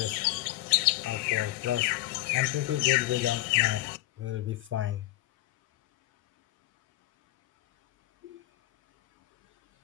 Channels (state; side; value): quieter; right; 17.3 dB